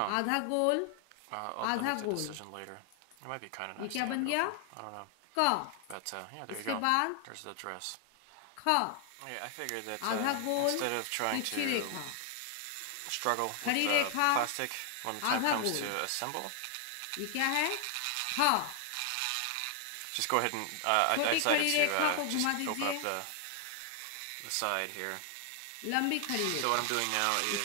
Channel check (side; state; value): both; different; correlation 0.00